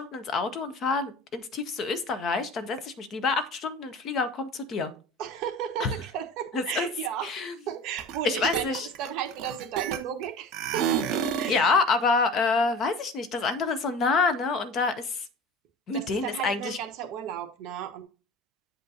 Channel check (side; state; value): both; normal; correlation 0.37